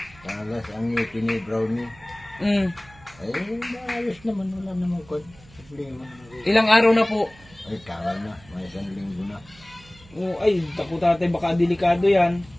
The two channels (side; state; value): right; noise; hum, 24 dB below the sound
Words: Talas ang ngipin ni Brownie. Ay, maayos naman. Wala naman kwan. Problema. Ilang araw na po? Ay, tagal na. May 1 linggo na. O, ay, tapo tatay, baka delikado yan.